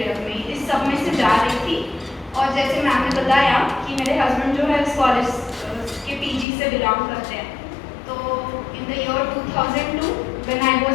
में, इस सब में से जा रही थी और जैसे मैम ने बताया कि मेरे हस्बैंड जो है इस कॉलेज के पीजी से बिलोंग करते हैं। तो in the year 2002 when I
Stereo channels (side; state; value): right; drops out; at 6.5 s